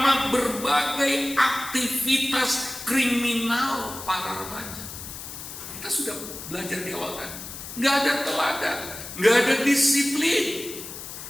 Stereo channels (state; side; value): noise; left; hiss, 11 dB below the sound